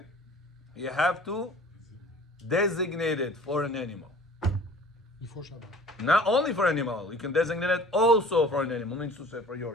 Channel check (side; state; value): both; normal; correlation 0.47